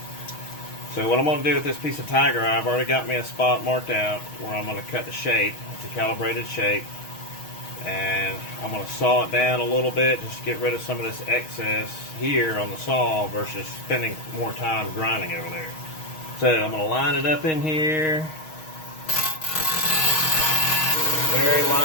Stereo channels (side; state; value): right; late; 6.4 ms